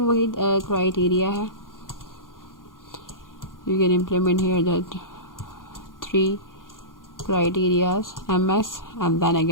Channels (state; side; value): late; right; 0.90 ms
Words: वही क्राइटेरिया है। You can implement here that 3 criterias, MS and then